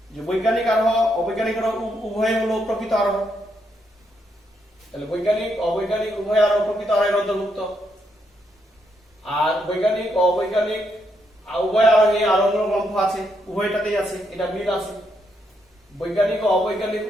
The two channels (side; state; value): both; normal; correlation 0.78